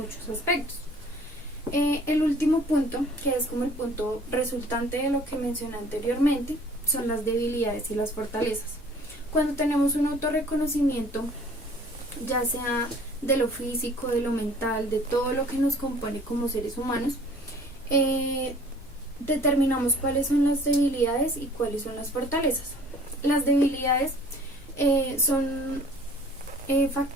aspectos. El último punto, que es como el punto resultante de lo que mencioné anteriormente, son las debilidades y las fortalezas. Cuando tenemos un autorreconocimiento, ya sea de lo físico, de lo mental, de todo lo que nos compone como seres humanos, determinamos cuáles son las debilidades y cuáles son las fortalezas. Las debilidades son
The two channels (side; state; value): both; normal; correlation 0.51